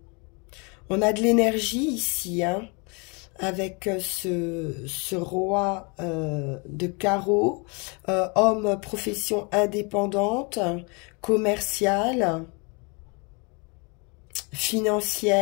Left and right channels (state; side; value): quieter; right; 31.6 dB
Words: On a de l'énergie ici, hein, avec ce roi de carreau, homme profession indépendante, commerciale,